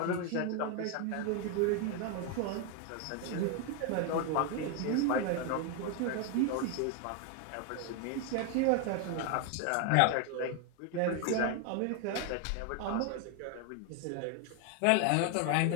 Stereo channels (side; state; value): both; different; correlation 0.01